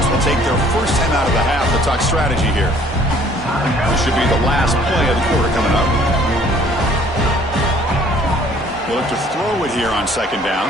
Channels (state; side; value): normal; both; correlation 0.57